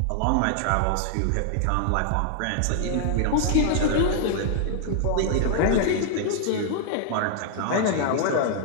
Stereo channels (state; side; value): different; both; correlation -0.01